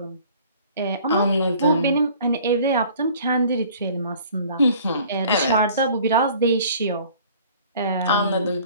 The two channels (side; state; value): both; inverted; correlation -0.51